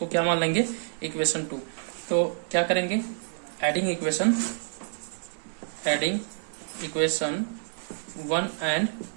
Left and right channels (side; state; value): left; silent; digital silence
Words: क्या मान लेंगे इक्वेशन 2। तो क्या करेंगे, एडिंग इक्वेशन 1 एंड